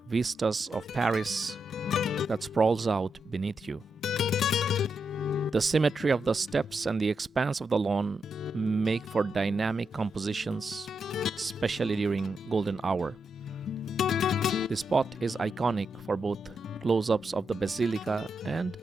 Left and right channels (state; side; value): normal; both; correlation 0.84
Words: vistas of Paris that sprawls out beneath you. The symmetry of the steps and the expanse of the lawn make for dynamic compositions, especially during golden hour. The spot is iconic for both close-ups of the Basilica and